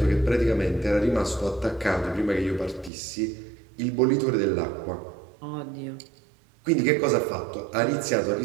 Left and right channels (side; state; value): left; drops out; at 2.9 s